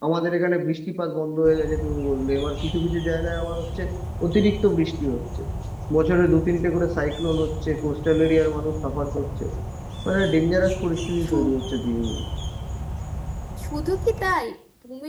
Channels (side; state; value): both; identical; correlation 1.00